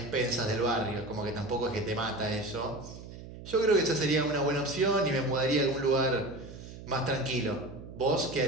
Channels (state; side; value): noise; right; hum, 14 dB below the sound